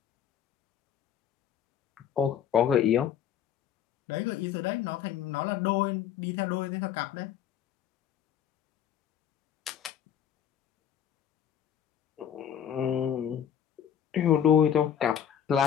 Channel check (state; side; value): quieter; right; 9.3 dB